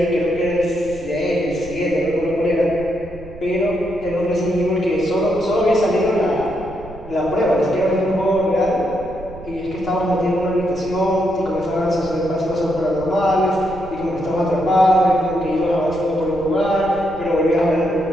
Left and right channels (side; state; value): right; noise; rumble, 16 dB below the sound